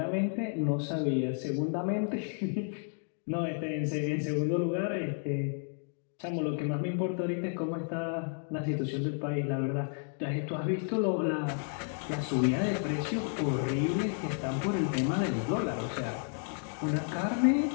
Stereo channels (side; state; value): right; silent; 56 dB below the other